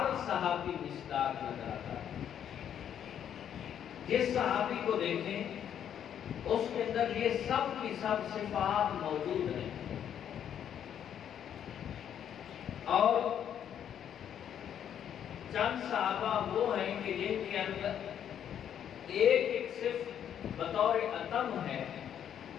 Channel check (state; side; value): quieter; right; 9.4 dB